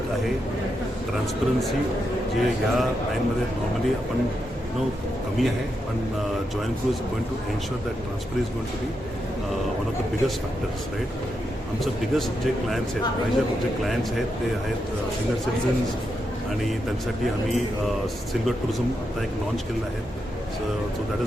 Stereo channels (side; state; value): both; normal; correlation 0.84